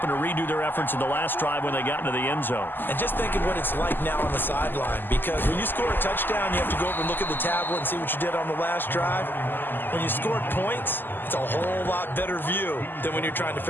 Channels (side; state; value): right; late; 0.092 ms